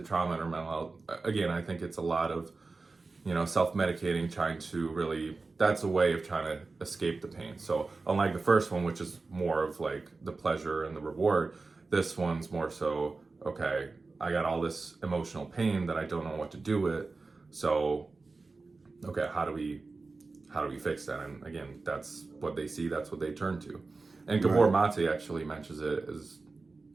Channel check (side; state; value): left; quieter; 3.8 dB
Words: trauma or mental health, again, I think it's a lot of, self-medicating, trying to really, that's a way of trying to escape the pain. So unlike the first one, which is more of like the pleasure and the reward, this one's more so, okay, I got all this emotional pain that I don't know what to do with. So, okay, how do we fix that? And again, that's what they see, that's what they turn to. And Gabor Mate actually mentions it as